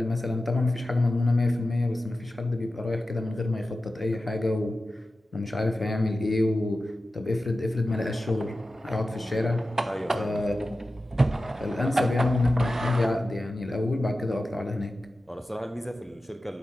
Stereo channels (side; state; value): both; normal; correlation 0.93